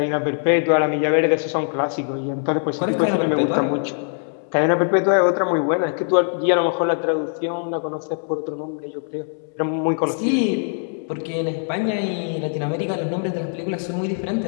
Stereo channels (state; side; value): silent; right; 61 dB below the other